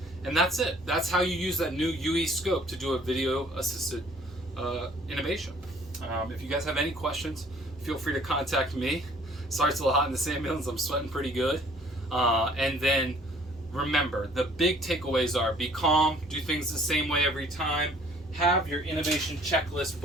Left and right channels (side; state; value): both; normal; correlation 0.56